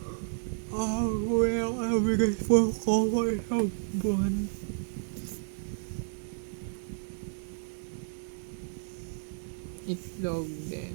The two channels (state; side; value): silent; left; digital silence